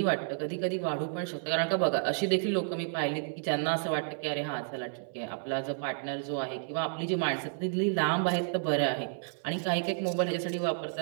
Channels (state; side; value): silent; left; 57 dB below the other